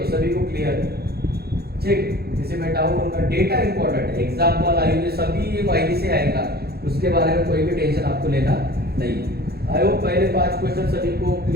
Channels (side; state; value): left; late; 0.46 ms